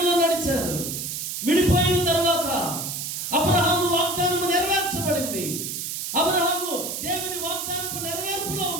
నడిచారు. విడిపోయిన తర్వాత అబ్రహాము వాగ్దానము నెరవేర్చబడింది. అబ్రహాము దేవుని వాగ్దానపు నెరవేర్పులో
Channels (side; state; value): right; noise; hiss, 4 dB below the sound